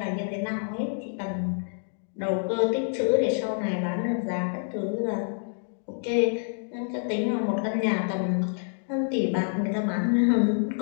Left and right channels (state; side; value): silent; right; digital silence